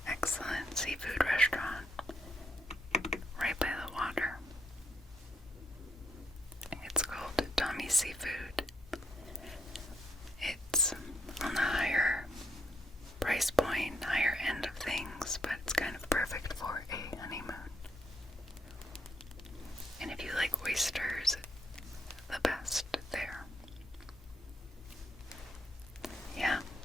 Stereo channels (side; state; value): both; normal; correlation 0.75